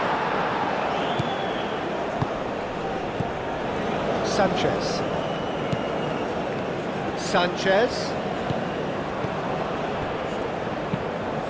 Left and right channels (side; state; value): both; identical; correlation 1.00